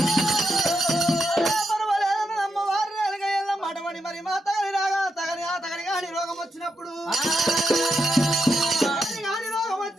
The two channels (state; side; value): normal; both; correlation 0.84